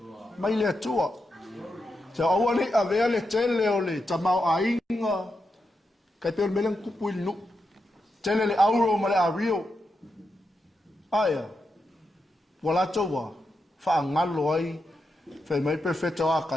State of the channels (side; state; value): both; normal; correlation 0.86